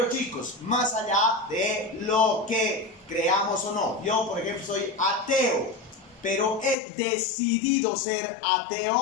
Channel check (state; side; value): drops out; right; at 6.8 s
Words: chicos, más allá de lo que creamos o no. Yo, por ejemplo, soy ateo, pero he decidido ser